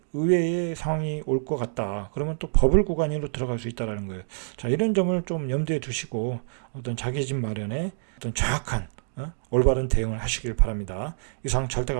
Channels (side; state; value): left; silent; digital silence